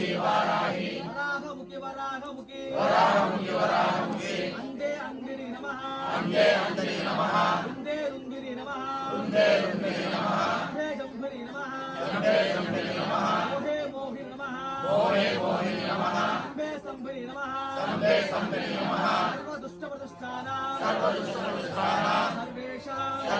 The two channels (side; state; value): both; identical; correlation 1.00